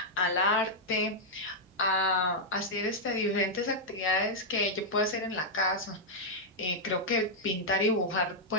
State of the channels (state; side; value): normal; both; correlation -0.05